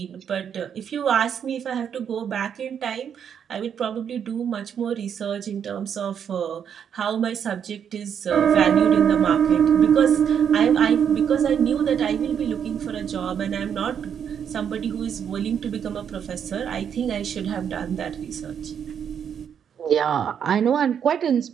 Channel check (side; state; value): left; quieter; 8.1 dB